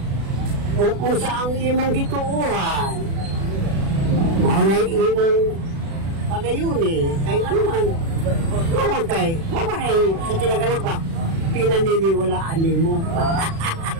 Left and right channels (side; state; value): left; late; 36 ms